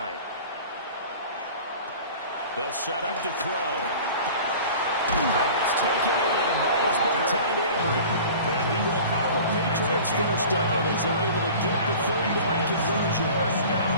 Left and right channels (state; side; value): inverted; both; correlation -0.41